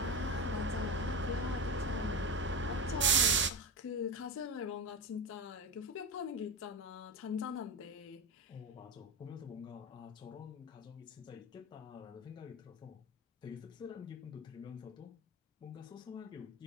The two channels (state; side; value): normal; both; correlation 0.19